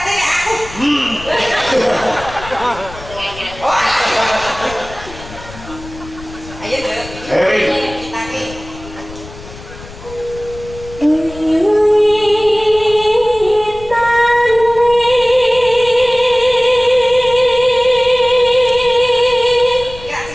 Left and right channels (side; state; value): left; noise; rumble, 16 dB below the sound